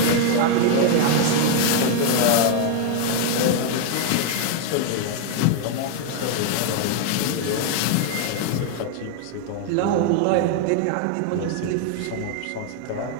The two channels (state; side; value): different; both; correlation 0.00